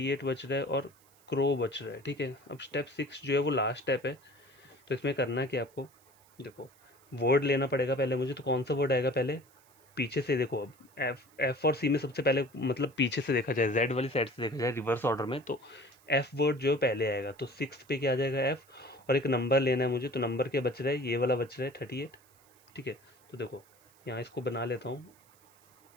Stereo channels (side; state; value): right; noise; hiss, 30 dB below the sound